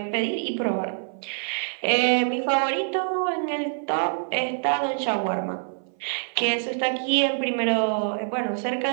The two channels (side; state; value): left; silent; 61 dB below the other